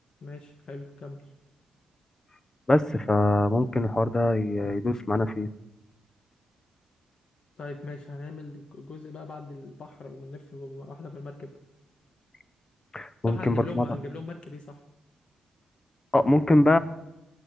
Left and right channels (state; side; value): normal; both; correlation 0.94